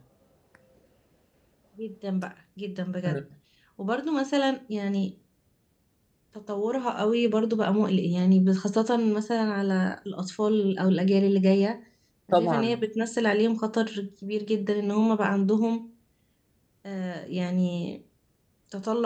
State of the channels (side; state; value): both; identical; correlation 1.00